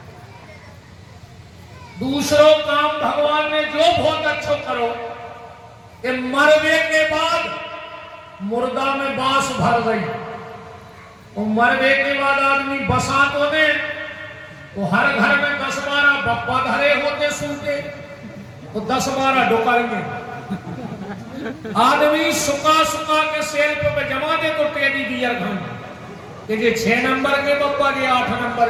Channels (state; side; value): identical; both; correlation 1.00